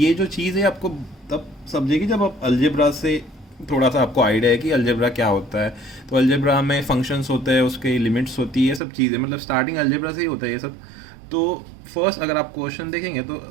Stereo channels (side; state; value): left; drops out; at 8.8 s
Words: जो चीज़ है आपको तब समझेगी जब आप अलजेब्रा से थोड़ा सा आपको आइडिया है कि अलजेब्रा क्या होता है। तो अलजेब्रा में फंक्शंस होते हैं, उसके लिमिट्स होती है, सब चीज़ें, मतलब स्टार्टिंग अलजेब्रा से ही होता है ये सब। तो फर्स्ट अगर आप क्वेश्चन देखेंगे तो